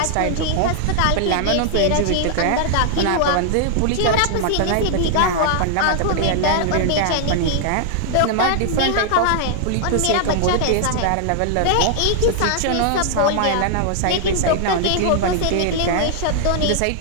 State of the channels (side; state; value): both; different; correlation 0.00